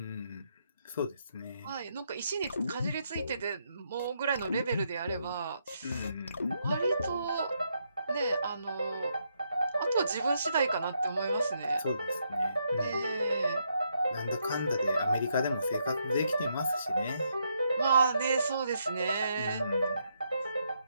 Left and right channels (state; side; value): inverted; both; correlation -0.77